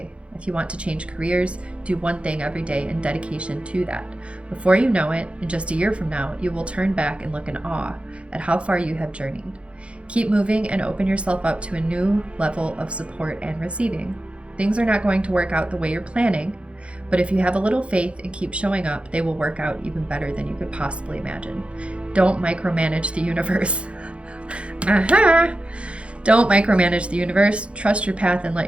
If you want to change careers, do one thing every day in dedication to that. Before you know it, in just a year from now, you will turn back and look in awe at how far you have journeyed. Keep moving and open yourself up to a new level of support and receiving. Things are not going to work out the way you're planning, but if you have a little faith and keep showing up, they will work out even better than you could possibly imagine. Don't micromanage the universe. Don't micromanage the universe. Trust your path and let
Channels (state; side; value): late; left; 0.060 ms